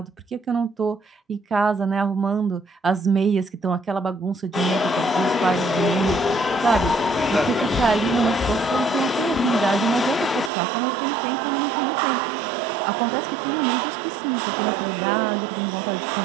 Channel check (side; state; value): left; drops out; at 10.5 s